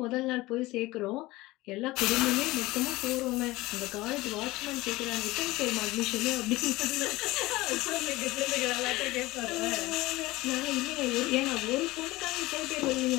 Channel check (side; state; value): right; quieter; 19.6 dB